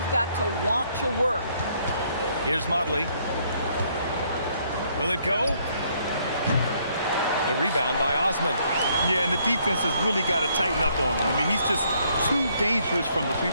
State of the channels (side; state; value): both; inverted; correlation -0.68